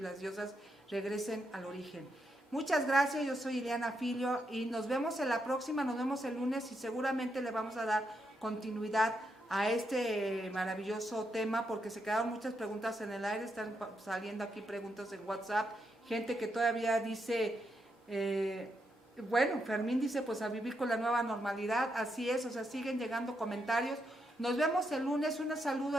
diosas regresen al origen. Muchas gracias, yo soy Ileana Filio y nos vemos en la próxima, nos vemos el lunes y seguramente le vamos a dar continuidad a este maravilloso tema porque se quedaron muchas preguntas en el aire, están saliendo aquí preguntas en WhatsApp, gente que todavía dice, bueno, Fermín dice pues a vivir con la nueva normalidad, así es, o sea, siguen llegando comentarios. Nos vemos el lunes, un saludo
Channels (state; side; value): normal; both; correlation 0.81